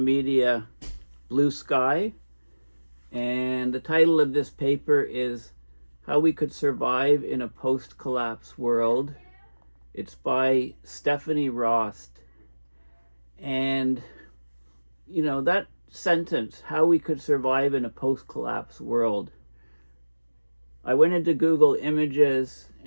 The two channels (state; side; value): inverted; both; correlation -1.00